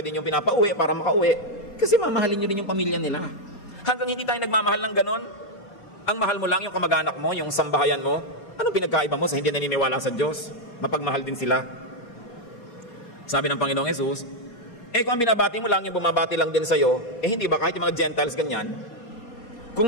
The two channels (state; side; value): late; right; 4.2 ms